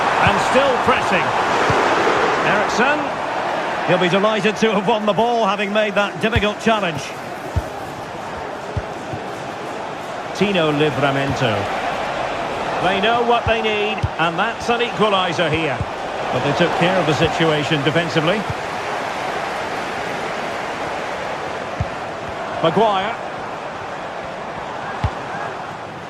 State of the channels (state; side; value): identical; both; correlation 1.00